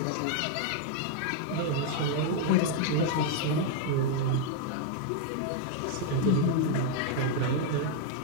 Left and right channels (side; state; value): both; different; correlation 0.00